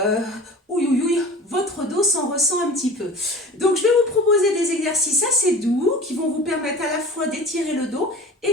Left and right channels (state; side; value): normal; both; correlation 0.38